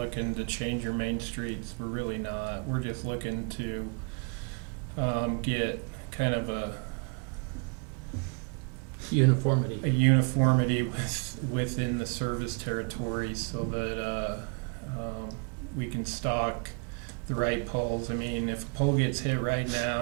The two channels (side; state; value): left; quieter; 35.8 dB